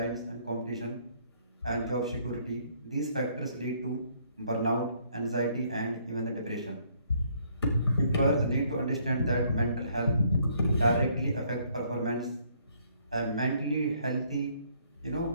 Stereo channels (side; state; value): both; inverted; correlation -0.66